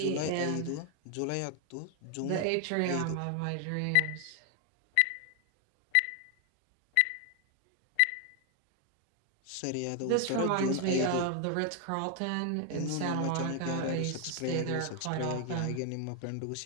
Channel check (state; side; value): different; both; correlation 0.00